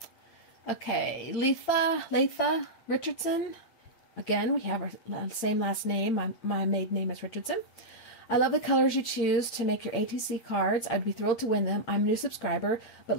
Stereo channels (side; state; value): right; late; 9.0 ms